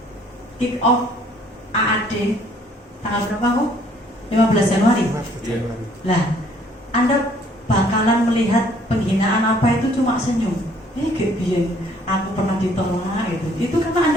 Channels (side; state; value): both; normal; correlation 0.61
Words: kick off AAD tanggal berapa kok? 15 Januari. Lah, Anda bakalan melihat penghinaan apa itu cuma senyum. Kayak biyen aku pernah ditolak gitu. Itu karena